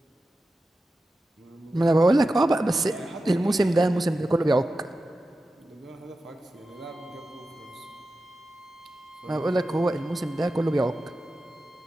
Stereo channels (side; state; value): both; normal; correlation 0.92